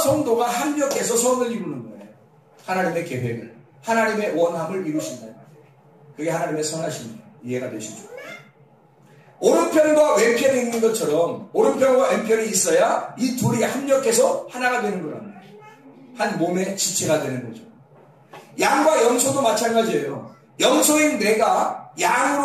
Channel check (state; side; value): identical; both; correlation 1.00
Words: 합력해서 선을 이루는 거예요. 하나님의 계획을, 하나님의 원함을 이루신다. 그게 하나님의 선하심이에요. 이해가 되시죠? 오른편과 왼편이 있는 것처럼 오른편과 왼편이 있어야 이 둘이 합력해서 하나가 되는 거란 말이에요. 한 몸의 지체가 되는 거죠. 양과 염소도 마찬가지예요. 염소인 내가